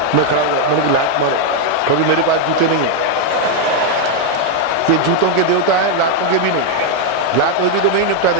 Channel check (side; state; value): both; different; correlation 0.01